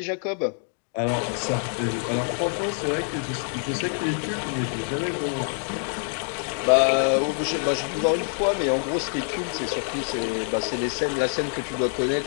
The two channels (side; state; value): right; silent; 57 dB below the other